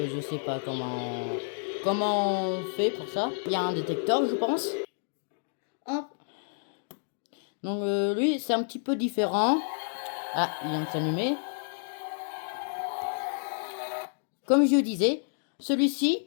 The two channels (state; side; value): silent; right; digital silence